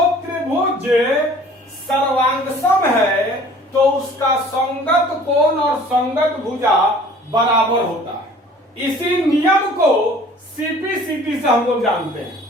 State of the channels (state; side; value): normal; both; correlation 0.50